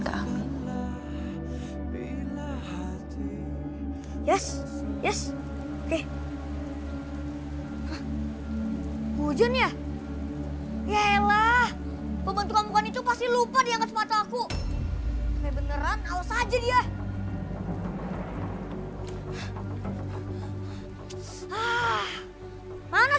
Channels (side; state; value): both; identical; correlation 1.00